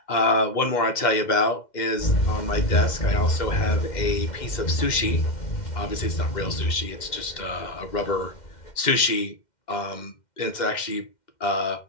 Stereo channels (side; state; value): right; late; 2.1 ms